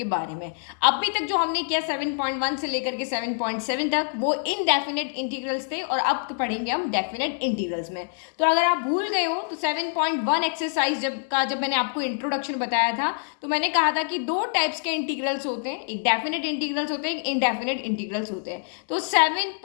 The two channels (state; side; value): silent; right; 61 dB below the other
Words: बारे में। अभी तक जो हमने किया 7.1 से लेकर के 7.7 तक वो इनडेफिनेट इंटीग्रल्स थे और अब पढ़ेंगे हम डेफिनेट इंटीग्रल्स में। तो अगर आप भूल गए हो तो 7.1 एक्सरसाइज जब मैंने आपको इंट्रोडक्शन बताया था तो मैंने कहा था कि दो टाइप्स के इंटीग्रल्स होते हैं, एक डेफिनेट इंटीग्रल्स होते हैं, एक इनडेफिनेट इंटीग्रल्स होते हैं। तो